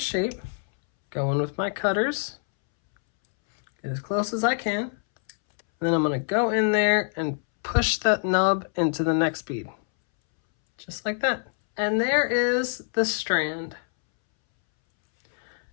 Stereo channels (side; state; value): right; silent; 62 dB below the other